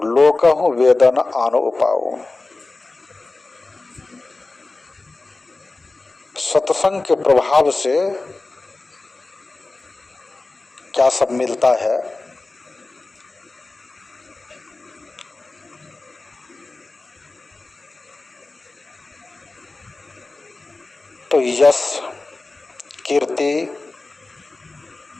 लोकहु वेदन आनो उपाओ। सत्संग के प्रभाव से क्या सब मिलता है? तो यश, कीर्ति,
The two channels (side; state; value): right; quieter; 3.3 dB